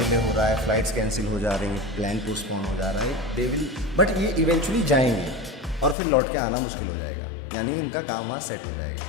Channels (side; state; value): right; drops out; at 6.0 s